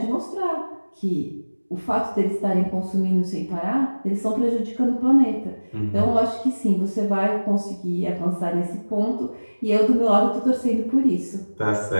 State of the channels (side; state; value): both; inverted; correlation -1.00